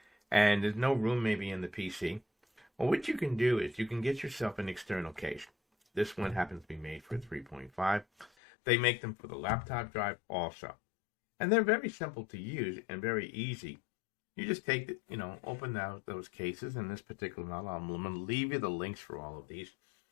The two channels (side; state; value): right; drops out; at 8.3 s